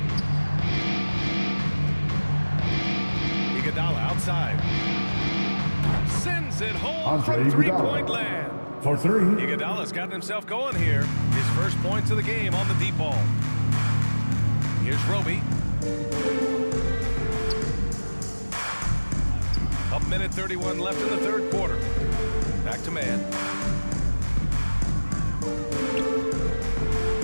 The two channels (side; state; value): both; inverted; correlation -1.00